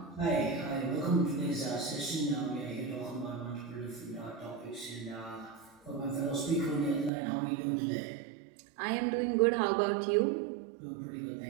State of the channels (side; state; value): left; drops out; at 7.1 s